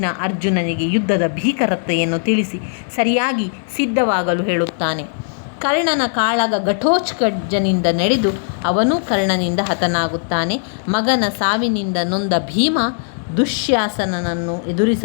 ಅರ್ಜುನನಿಗೆ ಯುದ್ಧದ ಭೀಕರತೆಯನ್ನು ತಿಳಿಸಿ ಸರಿಯಾಗಿ ಸಿದ್ಧವಾಗಲು ಹೇಳುತ್ತಾನೆ. ಕರ್ಣನ ಕಾಳಗ ಘಟೋತ್ಕಚನಿಂದ ನಡೆದು ಅವನೂ ಕರ್ಣನಿಂದ ಹತನಾಗುತ್ತಾನೆ. ಮಗನ ಸಾವಿನಿಂದ ನೊಂದ ಭೀಮ ದುಶ್ಯಾಸನನನ್ನು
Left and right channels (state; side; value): silent; right; 61 dB below the other